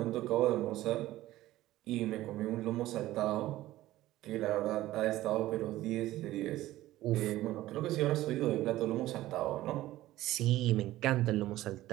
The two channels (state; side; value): quieter; left; 15.8 dB